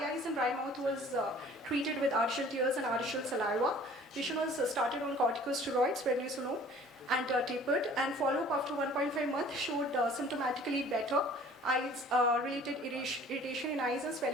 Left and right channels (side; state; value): both; normal; correlation 0.50